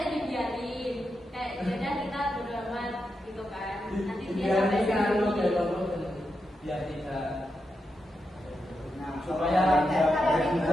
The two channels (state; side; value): normal; both; correlation 0.86